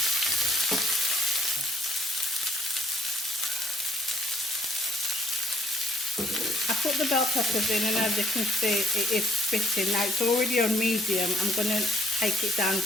I put the bell peppers in, and as you can see, it is spitting. Now it's already on medium. I'm going to take it down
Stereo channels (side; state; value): both; normal; correlation 0.63